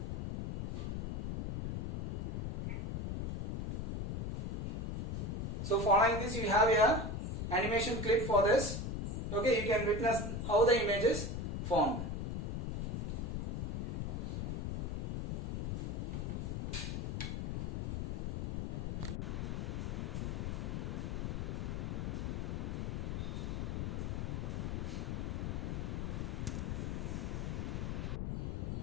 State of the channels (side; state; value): left; noise; rumble, 2 dB below the sound